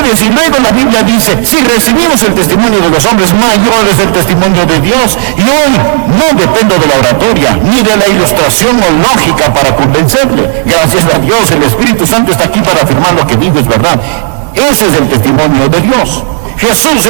Y luego la Biblia dice, si recibimos el testimonio de los hombres, mayor es el testimonio de Dios. Y hoy no dependo de la oratoria, ni de la ilustración o lógica para convencerle. Gracias a Dios, el Espíritu Santo está aquí para afirmar lo que digo es verdad. Ese es el testimonio de Dios. Jesús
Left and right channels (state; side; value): silent; left; 75 dB below the other